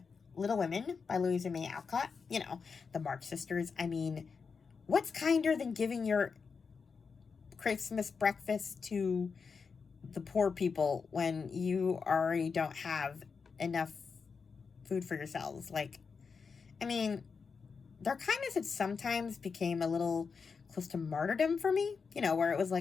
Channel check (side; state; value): right; quieter; 5.4 dB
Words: Little Women by Louisa May Alcott, the March Sisters. I mean, what's kinder than giving your Christmas breakfast to the poor people when you already don't have enough food for yourselves? Their kindness had sometimes became a little close to martyrdom for me, where it was